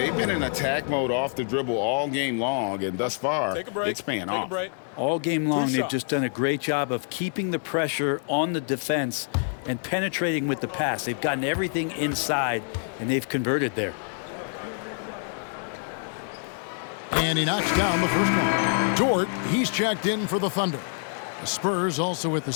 been in attack mode off the dribble all game long, and thus far, it's paying off. All game long, they've just done a great job of keeping the pressure on the defense and penetrating with the pass. They've gotten everything inside, and they've converted there. And he knocks down the first one. Dort, he's checked in for the Thunder. The Spurs also with the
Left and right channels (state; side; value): silent; right; 59 dB below the other